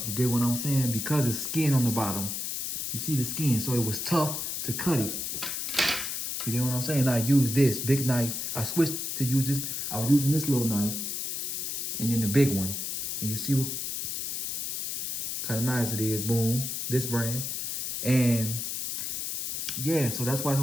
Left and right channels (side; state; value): left; noise; hiss, 3 dB below the sound